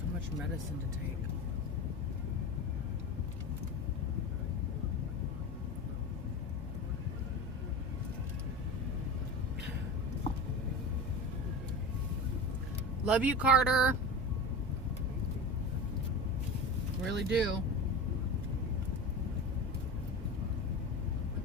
much medicine to take. Love you, Carter. Really do.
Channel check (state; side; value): normal; both; correlation 0.28